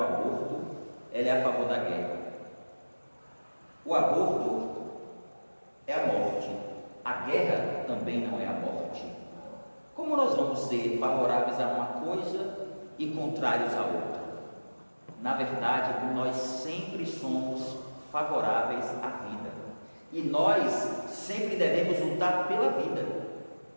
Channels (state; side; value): inverted; both; correlation -1.00